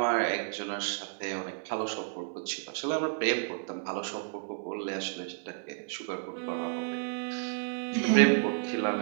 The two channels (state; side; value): silent; left; 57 dB below the other